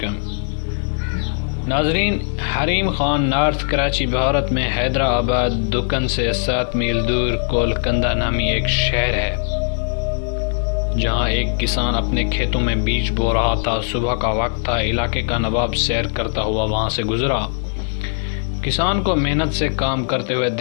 ناظرین، حریم خان نارتھ کراچی بھارت میں حیدرآباد دکن سے 7 میل دور کولکنڈہ نامی ایک شہر ہے، جہاں ایک کسان اپنے کھیتوں میں بیج بو رہا تھا۔ صبح کا وقت تھا، علاقے کا نواب سیر کرتا ہوا وہاں سے گزرا۔ کسان کو محنت سے کام کرتے ہوئے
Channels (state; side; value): silent; right; 66 dB below the other